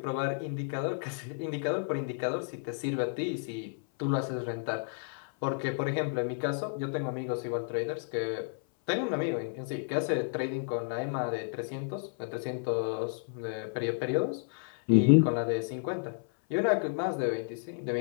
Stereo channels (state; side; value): silent; right; 57 dB below the other